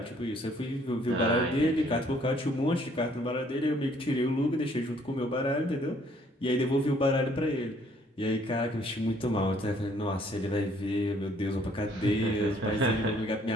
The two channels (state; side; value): normal; both; correlation 0.63